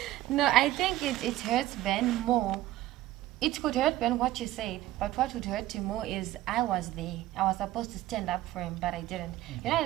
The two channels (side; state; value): left; quieter; 15.4 dB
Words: No, I think it hurts Ben more. It could hurt Ben what you said, but what would hurt him more is I was there. I was supposed to stand up for him, but I didn't. I